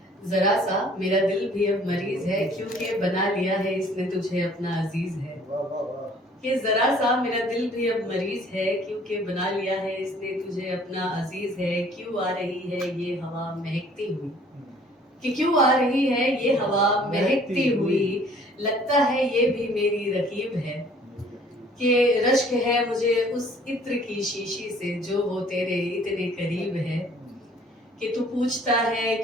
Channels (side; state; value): both; normal; correlation 0.55